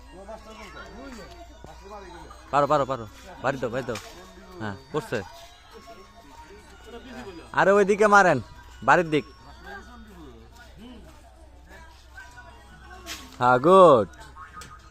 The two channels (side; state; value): both; identical; correlation 1.00